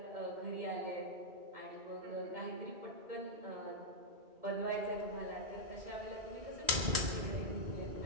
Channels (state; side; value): late; left; 1.9 ms